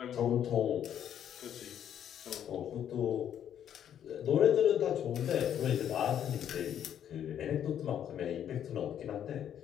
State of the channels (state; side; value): quieter; right; 9.8 dB